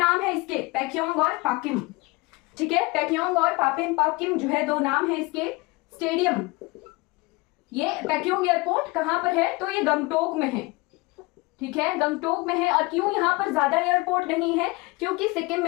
है इसके, पैक्योंग और पाकिम, ठीक है। पैक्योंग और पाकिम जो है 2 नाम है इसके। स्टेडियम, ये पैक्योंग एयरपोर्ट कहां पर है? तो ये गंगटोक में है, ठीक है, गंगटोक में है। और क्यों यहाँ पर ज्यादा एयरपोर्ट नहीं है? क्योंकि सिक्किम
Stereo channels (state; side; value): quieter; right; 23.7 dB